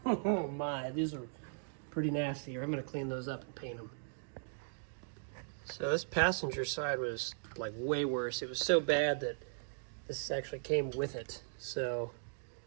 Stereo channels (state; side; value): silent; left; digital silence